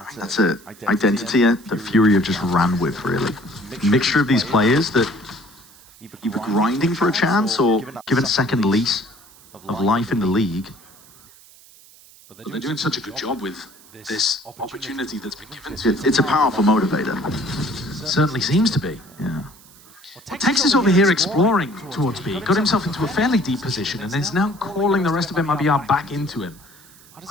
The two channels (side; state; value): right; noise; hiss, 24 dB below the sound